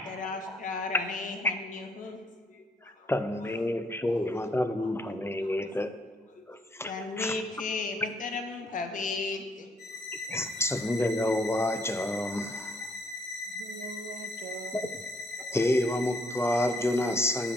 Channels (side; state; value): both; normal; correlation 0.68